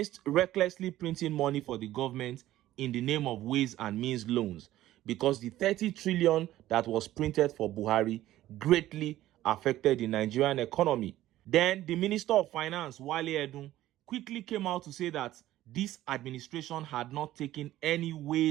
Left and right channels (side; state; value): left; quieter; 14.5 dB